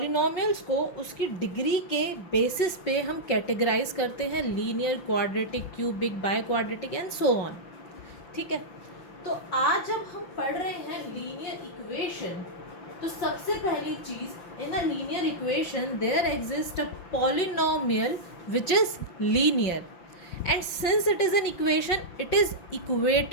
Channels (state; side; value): late; right; 5.8 ms